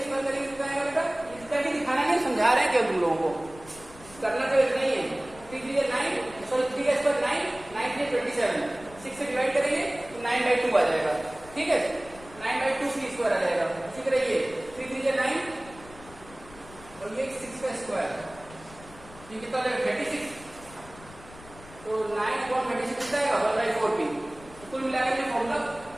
स्क्वायर करेंगे कितना आएगा बेटा? इसका भी दिखाना नहीं, समझा रहे हैं क्या तुम लोगों को, करना तो नहीं है। 3 3 9, सॉरी 3 का स्क्वायर 9, 9 3 27, 6 से डिवाइड करेंगे तो 9/2 आ जाएगा, ठीक है। 9/2 p स्क्वायर आ जाएगा। ठीक रहिए, 3 3 9 और ये 6 का स्क्वायर, ये कितना आ जाएगा? 36। तो 9/36 कितना आएगा? 1/4 p। तो कुल मिलाकर ये फॉर्मूला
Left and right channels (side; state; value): left; noise; rumble, 20 dB below the sound